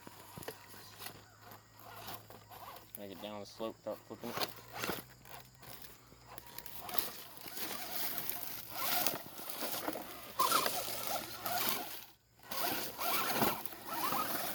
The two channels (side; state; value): both; identical; correlation 1.00